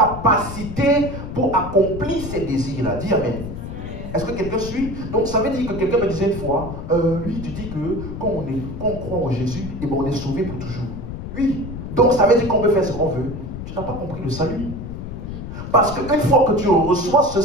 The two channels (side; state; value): left; noise; rumble, 8 dB below the sound